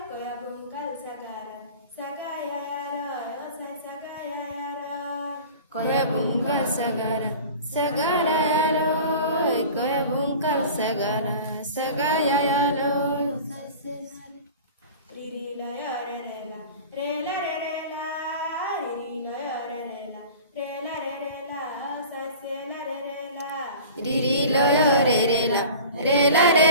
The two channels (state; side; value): inverted; both; correlation -0.39